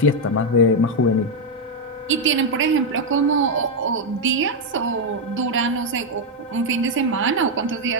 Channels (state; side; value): normal; both; correlation 0.02